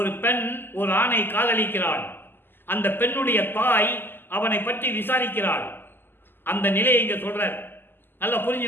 பெண் ஒரு ஆணை காதலிக்கிறாள். அந்த பெண்ணுடைய தாய் அவனை பற்றி விசாரிக்கிறாள். அந்த நிலையை இங்க சொல்றார். நல்லா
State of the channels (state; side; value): late; right; 0.097 ms